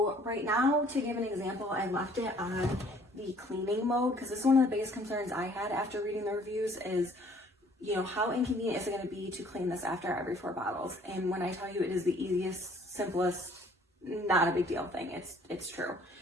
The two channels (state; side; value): normal; both; correlation 0.58